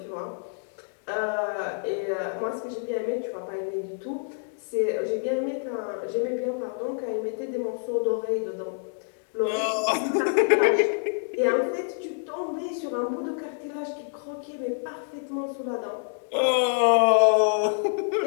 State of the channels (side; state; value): right; silent; 60 dB below the other